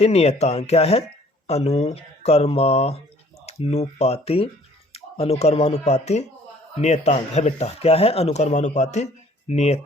नियतांक। क्या है, अनुक्रमानुपाती, अनुक्रमानुपाती नियतांक है बेटा। क्या है, अनुक्रमानुपाती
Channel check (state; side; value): normal; both; correlation 0.56